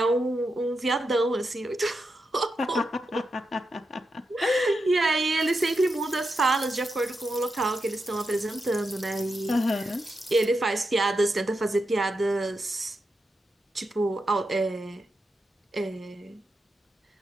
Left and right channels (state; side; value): normal; both; correlation 0.87